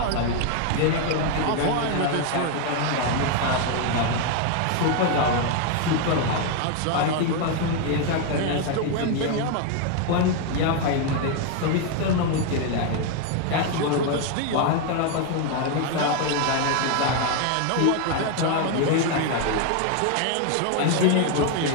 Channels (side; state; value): both; different; correlation 0.01